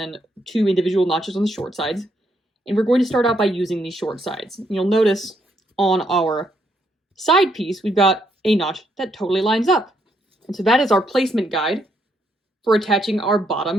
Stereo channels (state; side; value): normal; both; correlation 0.75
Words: 2 individual notches on the short sides. And we're going to start out by using these short sides. You'll notice on our side piece, we've got a notch that totally lines up. And so that is our placement guide for attaching our